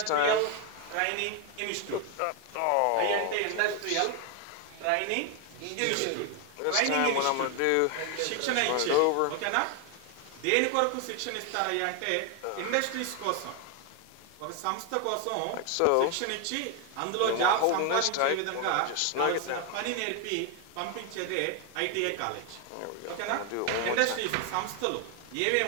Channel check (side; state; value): both; different; correlation 0.01